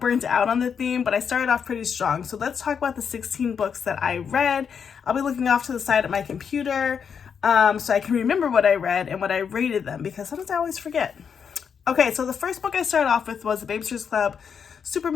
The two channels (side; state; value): right; quieter; 6.9 dB